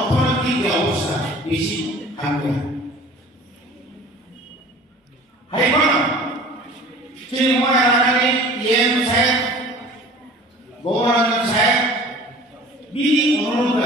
যে অবস্থা বেশি থাকবে হাইকোর্ট চিন্ময় রানানি ইএম সাহেব গৌরঞ্জন সাহেব বিনি অনুরোধ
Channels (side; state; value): both; normal; correlation 0.45